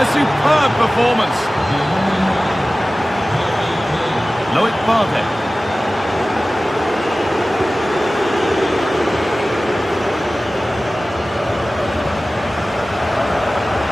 A superb performance. Loic Bardet.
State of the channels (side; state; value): both; normal; correlation 0.97